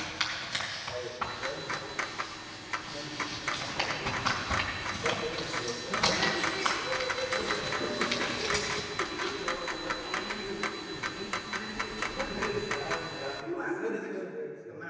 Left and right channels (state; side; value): identical; both; correlation 1.00